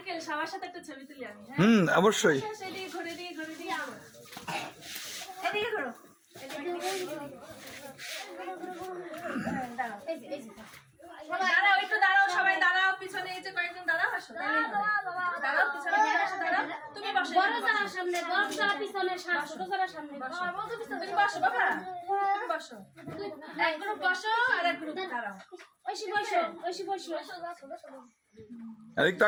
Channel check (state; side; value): identical; both; correlation 1.00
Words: সবার সাথে একটা ছবি তুলি আমি। অবশ্যই। এদিকে ঘুরে দিয়ে এদিকে ঘুরো। দাঁড়াও একটু দাঁড়াও, সবাই দাঁড়াও, পিছনে এই যে কয়েকজন দাঁড়াও, আসো দাঁড়াও, পিছনে আসো, দাঁড়াও, তুমি বসো, বড় যারা সামনে, বড় যারা পিছনে, ছোট যারা সামনে বসো, তুমি বসো বাবা, তুমি বসো, এক গ্রুপ বসো আর এক গ্রুপ দাঁড়াও, ঐশী বসো, এদিক